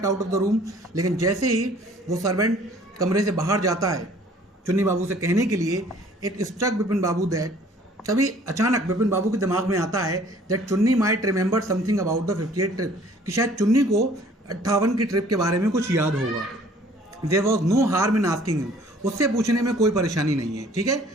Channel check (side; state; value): both; normal; correlation 0.55